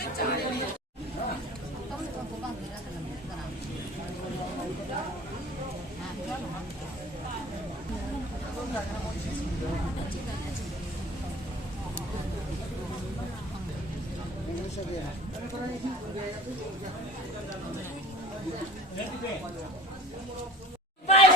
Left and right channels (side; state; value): both; normal; correlation 0.44